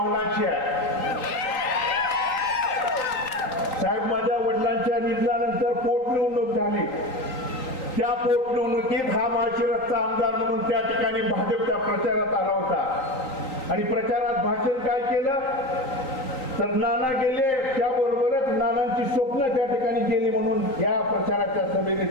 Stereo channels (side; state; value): right; late; 3.8 ms